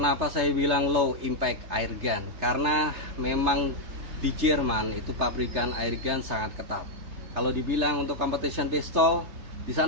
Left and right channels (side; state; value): left; late; 3.3 ms